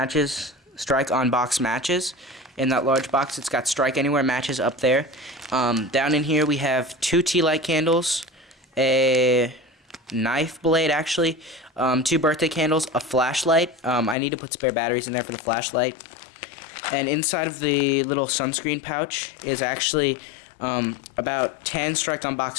box matches. In that large box it's got strike anywhere matches up there. Down in here we have 2 tea light candles, a knife blade actually, 2 birthday candles, a flashlight. I need to put spare batteries in there for the flashlight. And inside of the little sunscreen pouch is actually about 10 strike on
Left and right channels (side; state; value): right; drops out; at 14.2 s